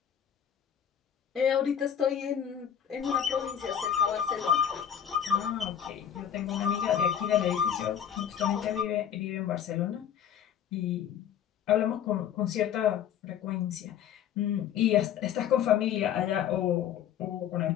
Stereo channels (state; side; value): quieter; right; 9.3 dB